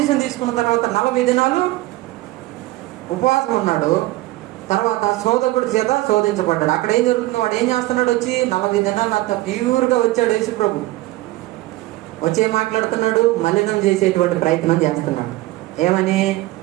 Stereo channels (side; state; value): left; quieter; 18.2 dB